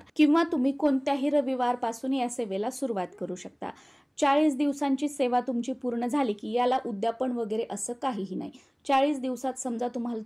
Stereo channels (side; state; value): both; identical; correlation 1.00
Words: किंवा तुम्ही कोणत्याही रविवारपासून या सेवेला सुरुवात करू शकता. 40 दिवसांची सेवा तुमची पूर्ण झाली की याला उद्यापन वगैरे असं काहीही नाही. 40 दिवसात समजा तुम्हाला